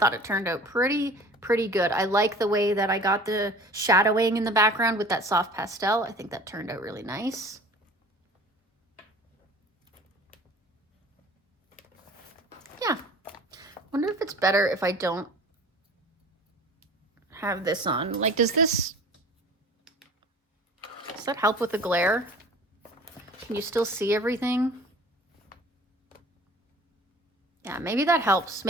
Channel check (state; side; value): normal; both; correlation 0.44